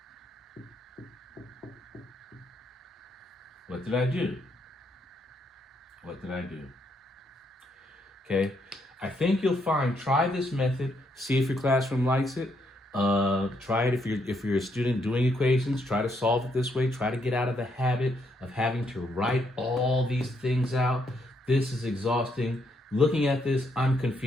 What did I do? What did I do? Okay, I think you'll find, try this method, see if your classroom likes it. Try it if you're a student doing equations. Try to solve it this way. Try to get out of the habit of having to write all these things out. This is exhausting. Looking at this, I'm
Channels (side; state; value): both; normal; correlation 0.75